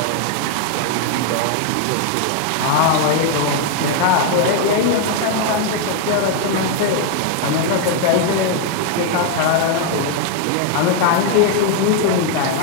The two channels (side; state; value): both; different; correlation 0.00